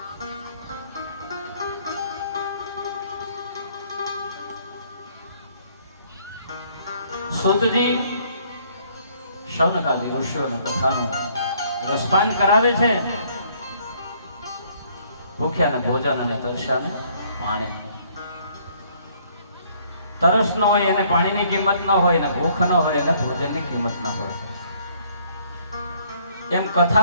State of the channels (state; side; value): inverted; both; correlation -0.63